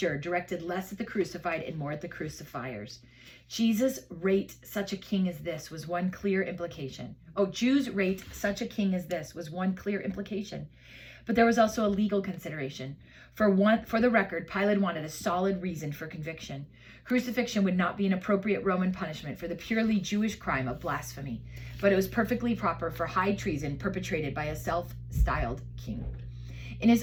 directed less at the crucified and more at the crucifiers. Jesus rate such a king as this was one clear implication. Jews rate such a king as this was one clear implication. But there was also a legal consideration. For the record, Pilate wanted a solid reason for conviction. Crucifixion would not be an appropriate Roman punishment for the purely Jewish crime of blasphemy, but it was perfectly proper for high treason perpetrated by a self-styled king. In his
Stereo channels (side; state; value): both; identical; correlation 1.00